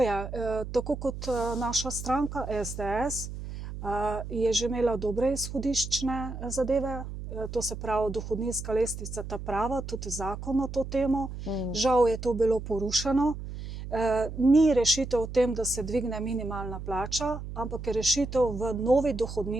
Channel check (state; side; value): noise; right; hum, 9 dB below the sound